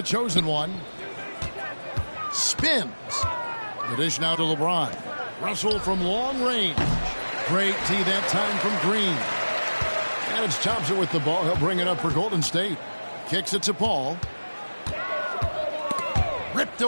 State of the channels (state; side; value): inverted; both; correlation -1.00